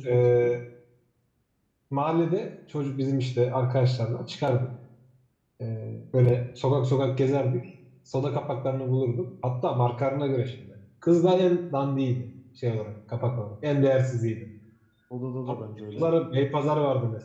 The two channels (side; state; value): both; identical; correlation 1.00